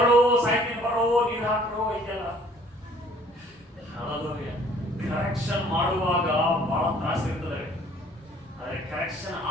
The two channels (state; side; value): normal; both; correlation 0.56